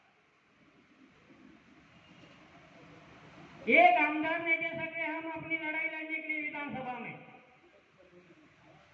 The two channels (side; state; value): both; identical; correlation 1.00